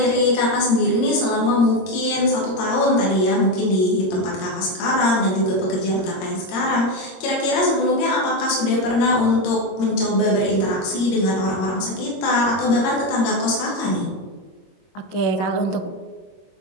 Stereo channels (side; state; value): right; late; 22 ms